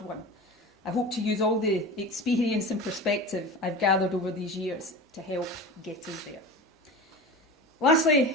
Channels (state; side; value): normal; both; correlation 0.32